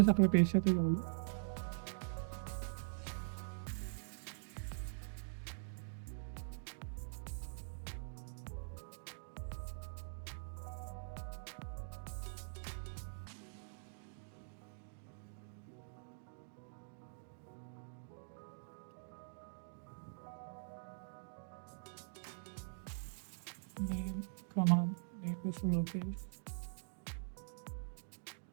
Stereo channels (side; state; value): left; silent; digital silence